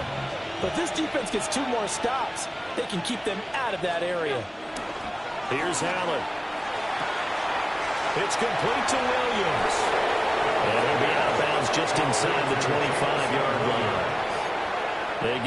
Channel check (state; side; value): identical; both; correlation 1.00